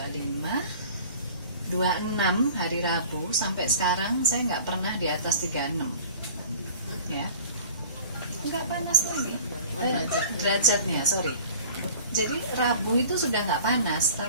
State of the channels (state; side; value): inverted; both; correlation -0.43